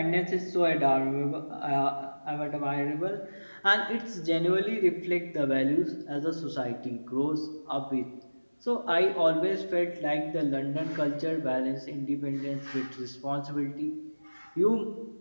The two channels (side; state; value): both; inverted; correlation -1.00